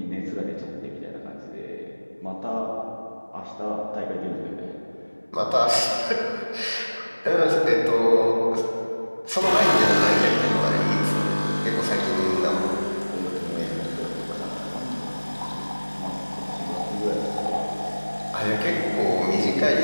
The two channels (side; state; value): both; inverted; correlation -1.00